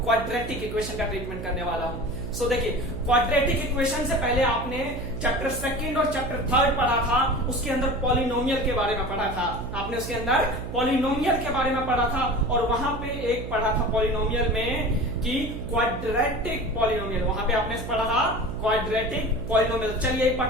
इक्वेशन का ट्रीटमेंट करने वाला हूं। सो देखिए, क्वाड्रेटिक इक्वेशन से पहले आपने चैप्टर 2 और चैप्टर 3 पढ़ा था। उसके अंदर पॉलिनोमियल के बारे में पढ़ा था। आपने उसके अंदर पॉलिनोमियल के बारे में पढ़ा था और वहां पे एक पढ़ा था पॉलिनोमियल में कि क्वाड्रेटिक पॉलिनोमियल, वहां पे आपने पढ़ा था क्वाड्रेटिक पॉलिनोमियल। चलिए एक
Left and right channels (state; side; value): noise; right; hum, 8 dB below the sound